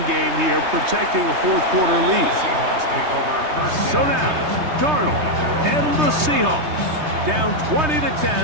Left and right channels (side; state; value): left; late; 3.3 ms